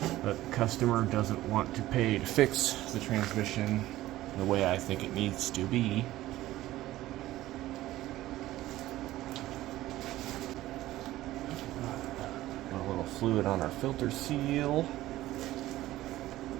But customer doesn't want to pay to fix the transmission the way I think it needs to be. A little fluid on our filter seal.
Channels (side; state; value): left; quieter; 15.7 dB